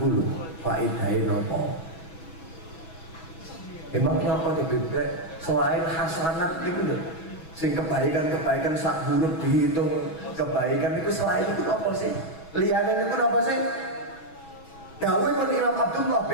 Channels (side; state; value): right; late; 6.1 ms